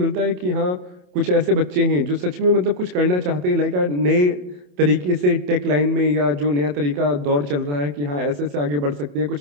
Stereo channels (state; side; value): late; left; 27 ms